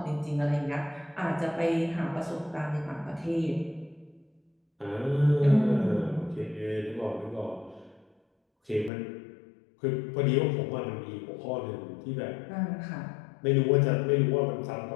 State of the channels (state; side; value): drops out; right; at 8.9 s